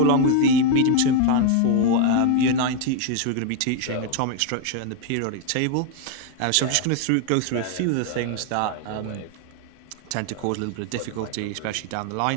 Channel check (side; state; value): both; different; correlation 0.01